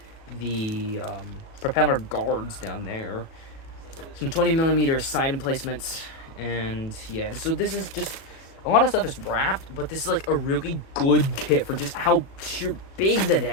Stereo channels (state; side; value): late; right; 37 ms